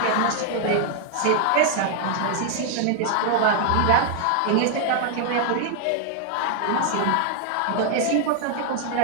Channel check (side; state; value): both; different; correlation 0.00